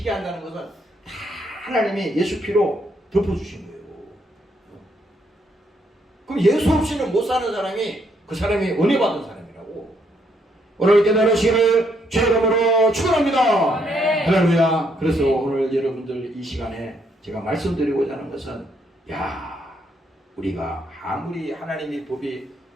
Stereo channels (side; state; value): both; normal; correlation 0.73